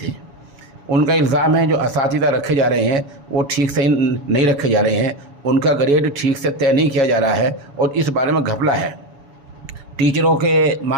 उनका इल्ज़ाम है जो असातिज़ा रखे जा रहे हैं वो ठीक से नहीं रखे जा रहे हैं, उनका ग्रेड ठीक से तय नहीं किया जा रहा है और इस बारे में घपला है। टीचरों के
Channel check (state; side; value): late; left; 7.1 ms